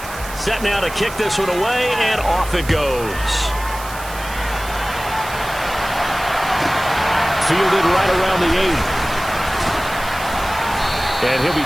Set now to kick this one away, and off it goes. Fielded right around the 8. And he'll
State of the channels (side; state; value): right; noise; hiss, 14 dB below the sound